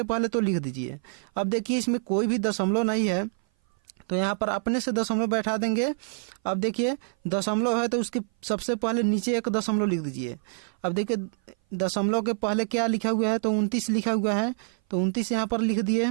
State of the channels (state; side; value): silent; left; 57 dB below the other